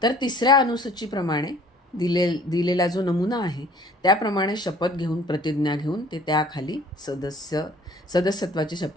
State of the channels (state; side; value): normal; both; correlation 0.53